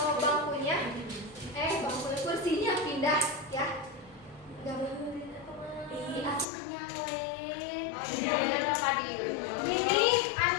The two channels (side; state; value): right; drops out; at 6.5 s